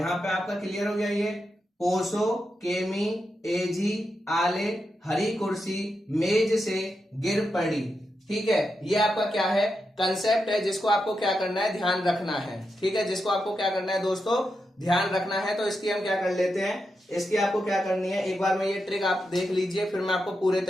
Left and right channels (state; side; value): normal; both; correlation 0.86